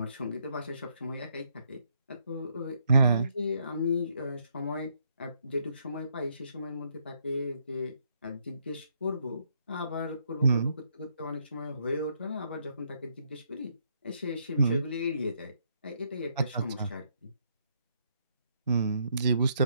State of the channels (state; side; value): inverted; both; correlation -0.73